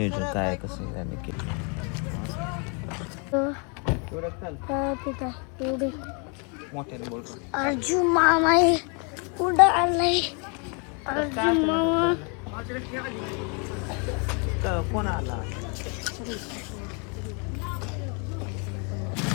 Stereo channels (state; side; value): quieter; right; 35.6 dB